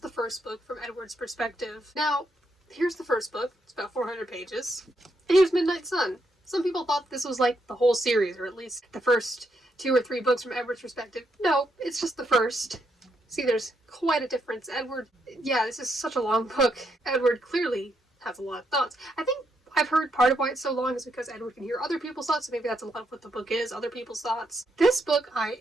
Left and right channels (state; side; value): normal; both; correlation 0.78